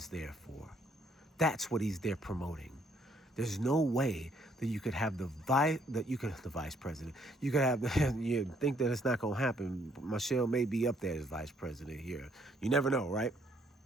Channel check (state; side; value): normal; both; correlation 0.67